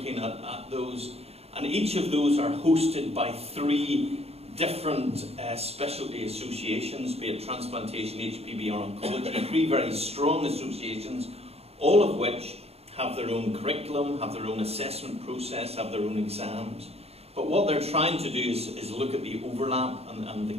at those, and each of those are hosted by 3 different specialty associations, be it transplantation, HPB or oncology, 3 very strong associations, all of which have their own curriculum, have their own assessment process, have their own exams. But what they're trying to do is look at the overlap and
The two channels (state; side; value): late; left; 0.29 ms